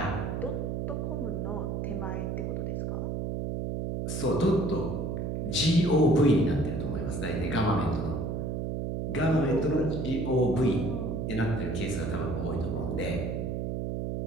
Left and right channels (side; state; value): right; noise; hum, 2 dB below the sound